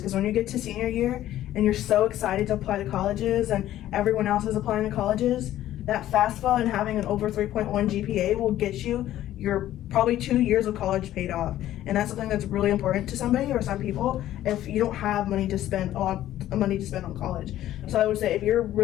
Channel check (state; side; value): quieter; right; 13.2 dB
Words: when you get to senior year and you're so excited to apply to colleges and everyone else is applying to colleges, that FAFSA and having an over 3.1 GPA will get you your probably 2 years of college paid off. And that's something that's really important to somebody or some people if you don't have money to spend a lot of money to spend on college. So I would say if you're